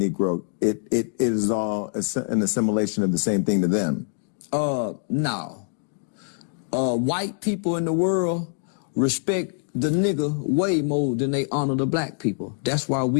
it is all an assimilation of the same thing to them? No. White people in the world respect the nigger way more than they honor the black people. That's why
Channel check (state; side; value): silent; right; digital silence